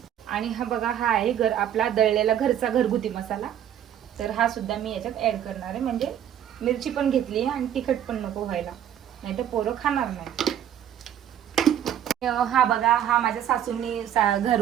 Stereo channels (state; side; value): quieter; left; 10.2 dB